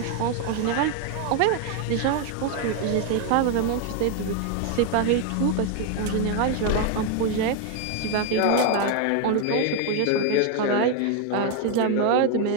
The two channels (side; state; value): both; different; correlation 0.00